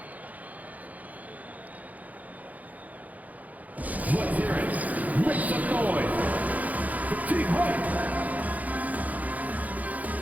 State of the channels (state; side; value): late; left; 0.077 ms